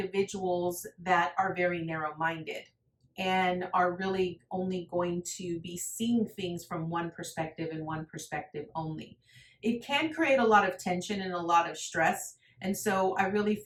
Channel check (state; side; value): identical; both; correlation 1.00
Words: that are very narrow-minded and are really only going to be seeing things from one perspective and one perspective only. It can create a lot of tension and a lot of stress. And so I really